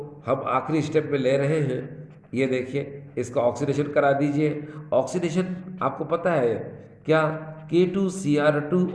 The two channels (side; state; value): both; identical; correlation 1.00